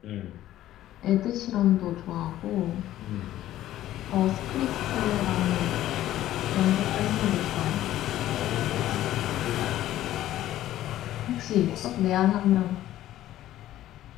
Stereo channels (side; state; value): right; quieter; 13.6 dB